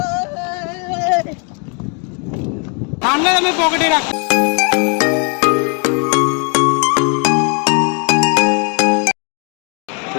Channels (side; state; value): right; quieter; 37.0 dB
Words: ঠান্ডা আমি পকেটে রাখ